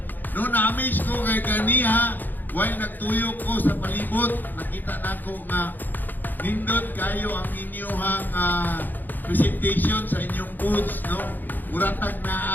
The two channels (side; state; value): right; late; 0.087 ms